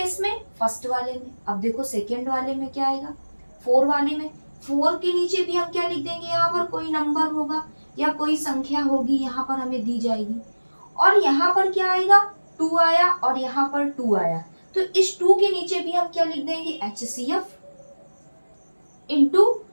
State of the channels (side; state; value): both; inverted; correlation -1.00